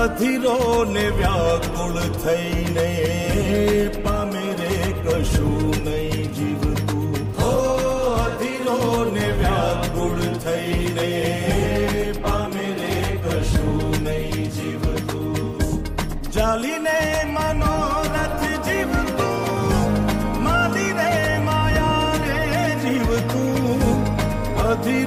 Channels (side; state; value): both; identical; correlation 1.00